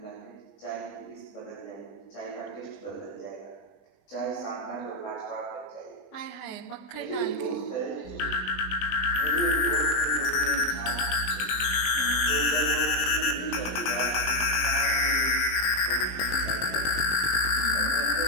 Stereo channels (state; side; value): late; right; 20 ms